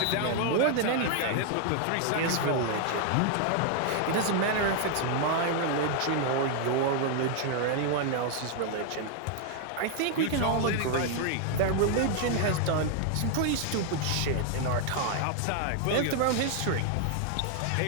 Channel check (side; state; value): both; different; correlation 0.00